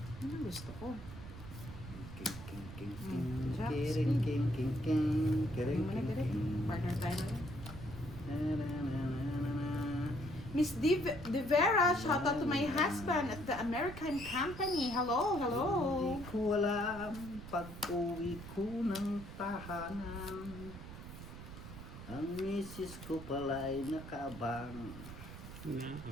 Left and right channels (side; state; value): right; noise; rumble, 12 dB below the sound